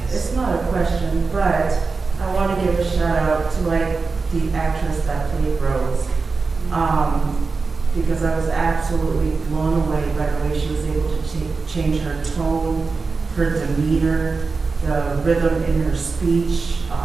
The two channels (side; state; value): left; quieter; 4.3 dB